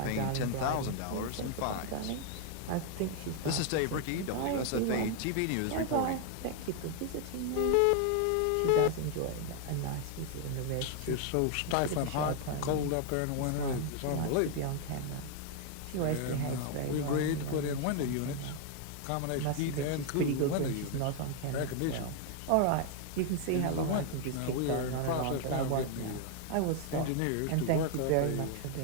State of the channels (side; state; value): both; different; correlation 0.00